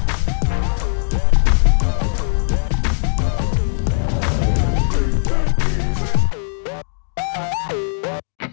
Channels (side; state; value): right; silent; digital silence